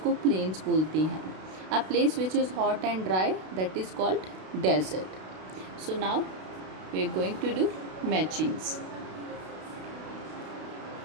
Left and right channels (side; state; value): left; late; 32 ms